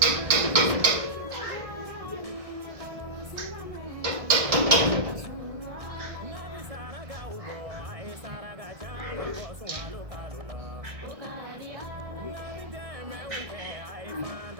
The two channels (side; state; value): left; late; 1.6 ms